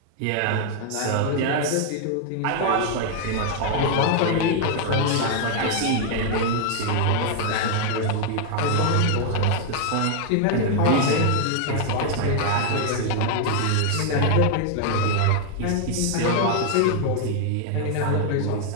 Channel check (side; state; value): both; different; correlation 0.00